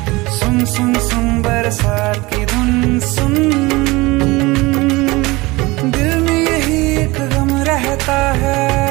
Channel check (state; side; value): quieter; left; 22.3 dB